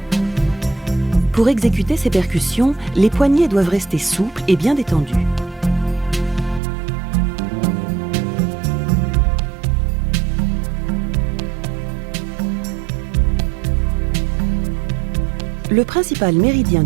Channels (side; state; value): left; drops out; at 6.6 s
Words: Pour exécuter ces percussions, les poignets doivent rester souples et bien détendus. Le principal méridien